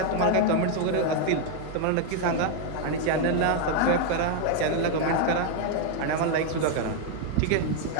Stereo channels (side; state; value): both; different; correlation 0.01